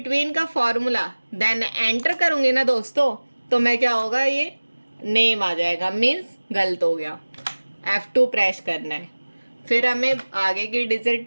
का फॉर्मूला, देन एंटर करूँगी ना दोस्तों, तो मैं क्या होगा, ये नेम आ जाएगा, मीन्स गलत हो गया। F2 प्रेस करना है, फिर हमें आगे की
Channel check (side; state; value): both; inverted; correlation -1.00